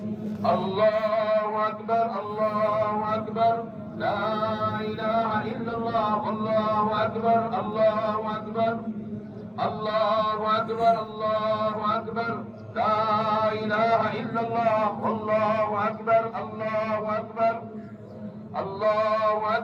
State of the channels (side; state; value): both; identical; correlation 1.00